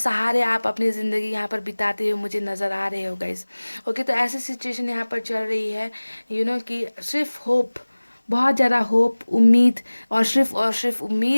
आप अपनी ज़िंदगी यहाँ पर बिताते हुए मुझे नज़र आ रहे हो गाइस। ओके, तो ऐसी सिचुएशन यहाँ पर चल रही है कि सिर्फ होप, बहुत ज़्यादा होप, उम्मीद, और सिर्फ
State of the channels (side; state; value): both; inverted; correlation -1.00